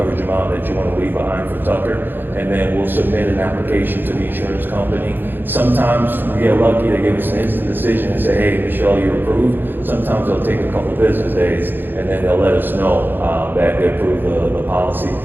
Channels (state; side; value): late; left; 0.096 ms